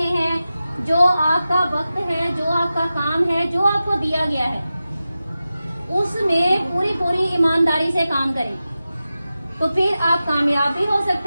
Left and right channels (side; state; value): both; inverted; correlation -0.93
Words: हैं, जो आपका वक्त है, जो आपका काम है, जो आपको दिया गया है, उसमें पूरी ईमानदारी से काम करें, तो फिर आप कामयाब भी हो